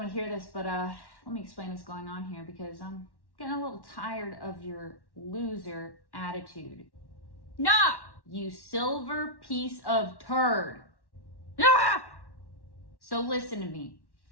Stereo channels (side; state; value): right; late; 1.1 ms